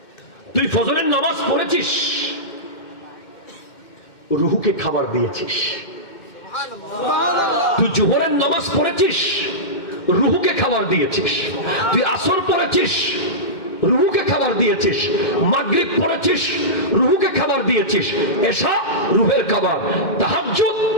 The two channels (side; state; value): right; late; 2.1 ms